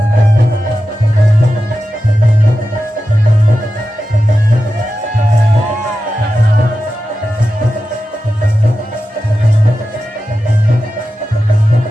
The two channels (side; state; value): both; normal; correlation 0.92